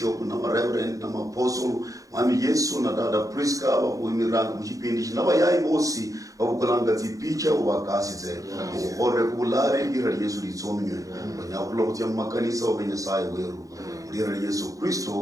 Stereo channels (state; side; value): late; left; 0.16 ms